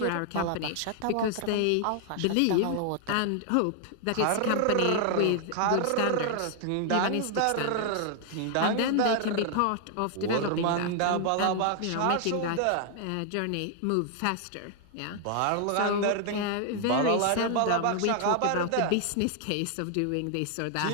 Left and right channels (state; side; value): different; both; correlation 0.00